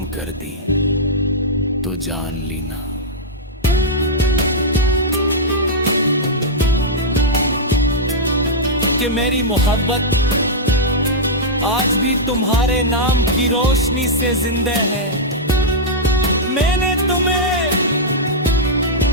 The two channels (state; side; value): normal; both; correlation -0.08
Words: कर दी, तो जान लेना कि मेरी मोहब्बत आज भी तुम्हारे नाम की रोशनी से जिंदा है। मैंने तुम्हें